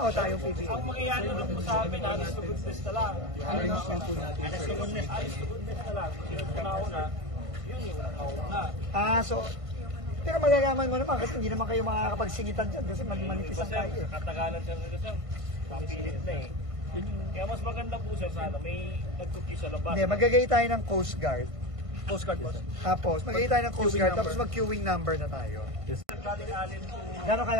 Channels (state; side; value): late; left; 1.5 ms